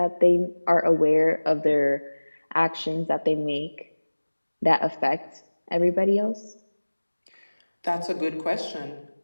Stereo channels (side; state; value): both; inverted; correlation -1.00